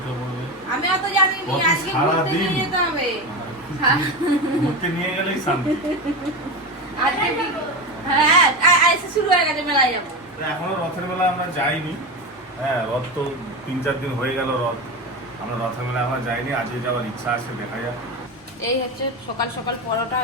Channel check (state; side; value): normal; both; correlation 0.20